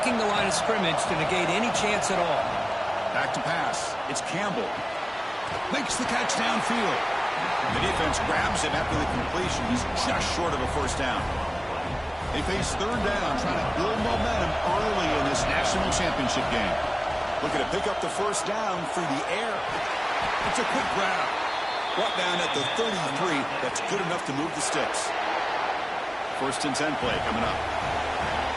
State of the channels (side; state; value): both; identical; correlation 1.00